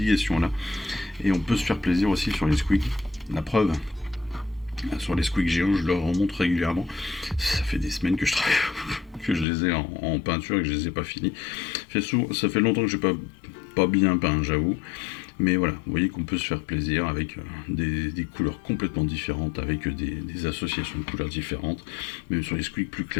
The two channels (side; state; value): right; drops out; at 9.5 s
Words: et on peut se faire plaisir aussi sur les squigs. La preuve, sur les squigs géants, je leur remonte régulièrement. Ça fait des semaines que je travaille, que je les ai en peinture et que je les ai pas finis. Ça fait longtemps que j'ai pas bien peint, j'avoue. Mais voilà, vous voyez qu'on peut se faire plaisir avec des couleurs complètement différentes, avec des associations de couleurs différentes. Même sur les squigs plus